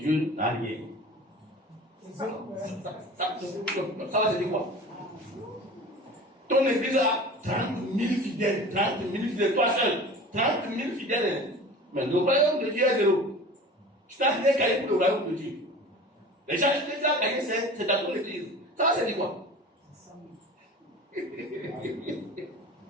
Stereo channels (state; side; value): normal; both; correlation 0.38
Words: n'a rien. Ça va se dire quoi? Ton église a 30 000 fidèles, toi seul, 30 000 fidèles. Mais le royaume de Dieu est zéro. Tu n'as rien gagné pour le royaume de Dieu. Les gens qui ont gagné, c'est dans ton église. Ça va se dire quoi?